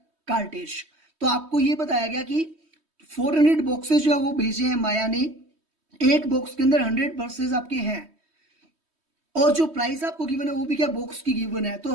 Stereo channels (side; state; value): left; late; 3.2 ms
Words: cartridge. तो आपको ये बताया गया कि 400 बॉक्सेस जो है वो भेजे हैं माया ने, एक बॉक्स के अंदर 100 ब्रशेस आपके हैं, और जो प्राइस आपको गिवन है वो भी क्या बॉक्स की गिवन है।